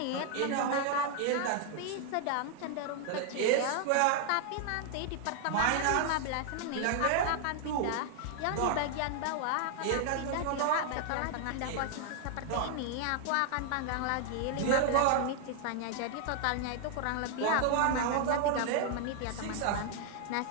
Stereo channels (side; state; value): both; different; correlation 0.00